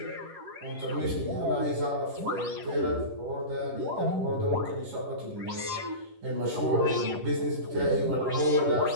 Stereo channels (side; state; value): left; late; 10 ms